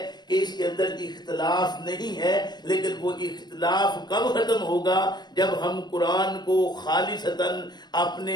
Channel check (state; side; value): late; right; 0.21 ms